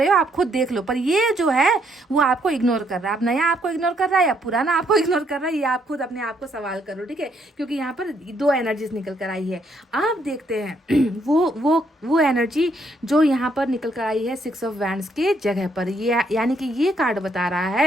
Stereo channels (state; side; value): normal; both; correlation 0.72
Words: हो, आप खुद देख लो। पर ये जो है वो आपको इग्नोर कर रहा है। अब नया आपको इग्नोर कर रहा है या पुराना आपको इग्नोर कर रहा है, ये आप खुद अपने आप को सवाल करो, ठीक है। क्योंकि यहाँ पर दो एनर्जीज निकल कर आई है। आप देखते हैं वो एनर्जी जो यहाँ पर निकल कर आई है 6 ऑफ वैंड्स के जगह पर। ये यानी कि ये कार्ड बता रहा